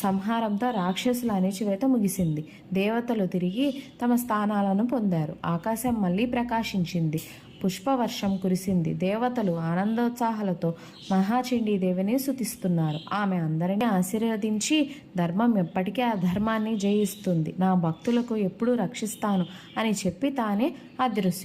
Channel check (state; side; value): identical; both; correlation 1.00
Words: సంహారంతో రాక్షసుల అణిచివేత ముగిసింది. దేవతలు తిరిగి తమ స్థానాలను పొందారు. ఆకాశం మళ్ళీ ప్రకాశించింది. పుష్పవర్షం కురిసింది. దేవతలు ఆనందోత్సాహాలతో మహాచండీదేవిని స్తుతిస్తున్నారు. ఆమె అందరినీ ఆశీర్వదించి, ధర్మం ఎప్పటికీ అధర్మాన్ని జయిస్తుంది, నా భక్తులకు ఎప్పుడూ రక్షిస్తాను అని చెప్పి తానే